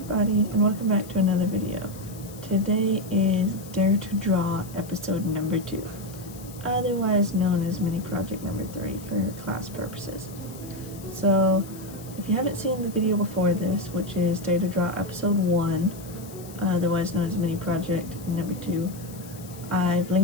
and welcome back to another video. Today is Dare to Draw episode number 2, otherwise known as mini project number 3 for class purposes. So if you haven't seen the video before this, which is Dare to Draw episode 1, otherwise known as mini project number 2, I've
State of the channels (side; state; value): left; noise; hiss, 19 dB below the sound